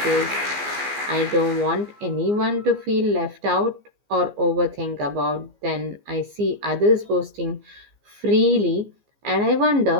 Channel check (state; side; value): late; left; 15 ms